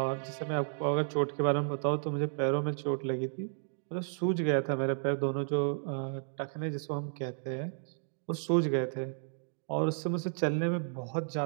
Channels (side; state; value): left; silent; digital silence